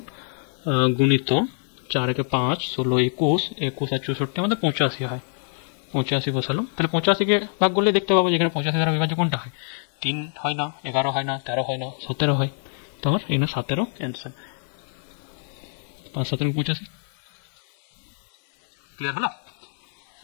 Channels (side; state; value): right; silent; 56 dB below the other